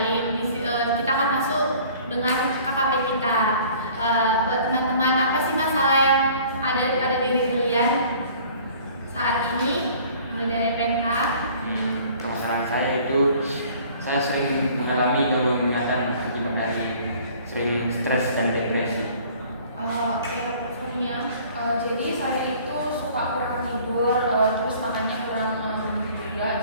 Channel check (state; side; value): inverted; both; correlation -0.52